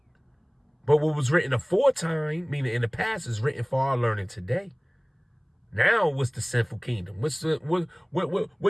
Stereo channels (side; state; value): both; identical; correlation 1.00